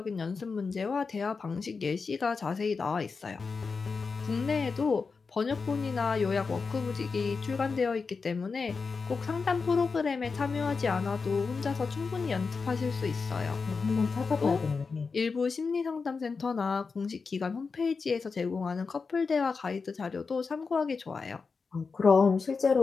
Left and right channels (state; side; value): quieter; right; 4.8 dB